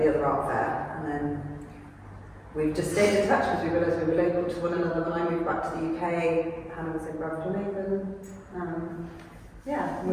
the other art fair, and then we've just stayed in touch because we realised we were local to one another. When I moved back to the UK, Hannah was in Bradford.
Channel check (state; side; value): identical; both; correlation 1.00